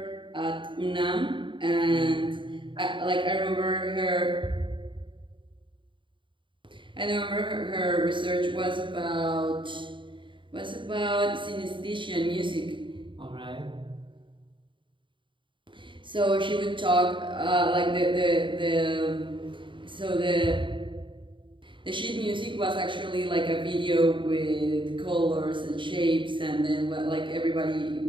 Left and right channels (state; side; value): late; left; 0.24 ms